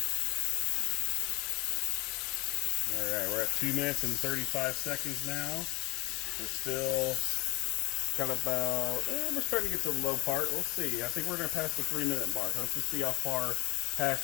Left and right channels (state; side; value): quieter; right; 23.7 dB